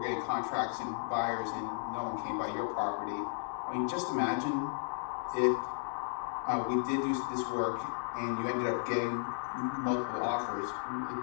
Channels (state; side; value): silent; right; digital silence